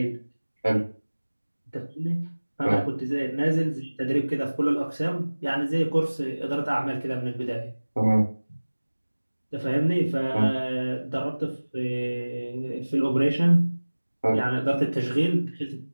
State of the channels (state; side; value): inverted; both; correlation -1.00